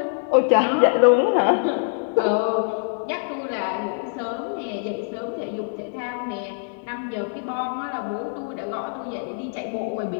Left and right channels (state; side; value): silent; right; 60 dB below the other